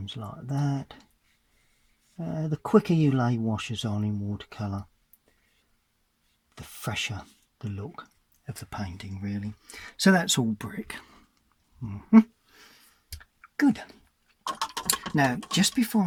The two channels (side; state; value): both; identical; correlation 1.00